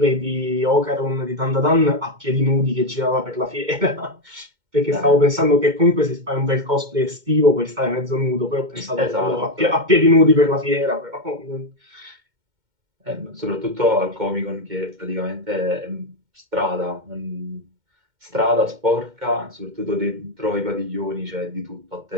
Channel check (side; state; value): left; late; 2.2 ms